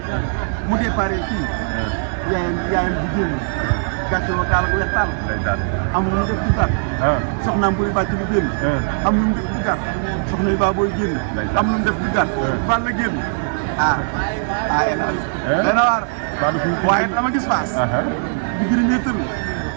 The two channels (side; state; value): left; silent; digital silence